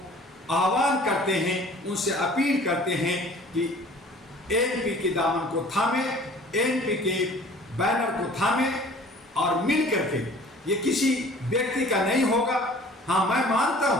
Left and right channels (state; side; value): normal; both; correlation 0.49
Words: आह्वान करते हैं, उनसे अपील करते हैं कि ANP के दामन को थामे, ANP के बैनर को थामे और मिल करके, ये किसी व्यक्ति का नहीं होगा। हाँ, मैं मानता